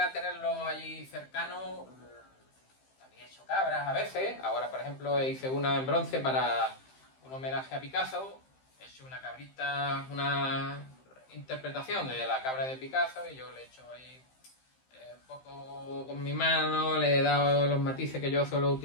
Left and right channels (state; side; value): late; right; 15 ms